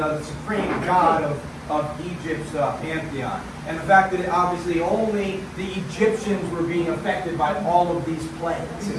supreme god of Egypt's pantheon. And the fact that obviously only the Egyptians were being affected by all of these plagues.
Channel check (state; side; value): identical; both; correlation 1.00